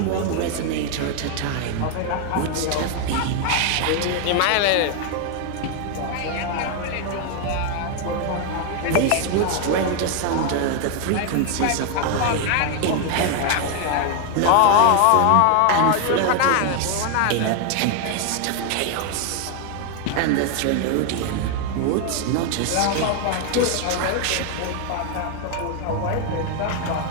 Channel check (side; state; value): both; different; correlation 0.00